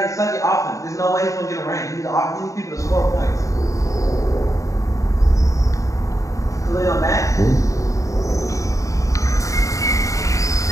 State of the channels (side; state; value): right; late; 0.16 ms